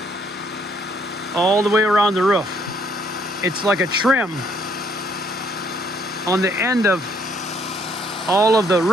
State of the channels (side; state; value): both; normal; correlation 0.67